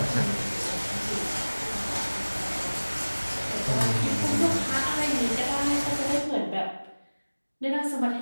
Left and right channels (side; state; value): both; inverted; correlation -1.00